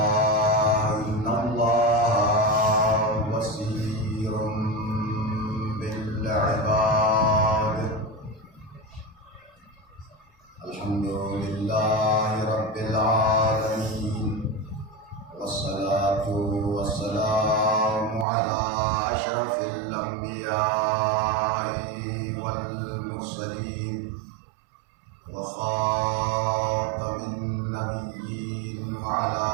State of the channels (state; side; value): drops out; left; at 18.2 s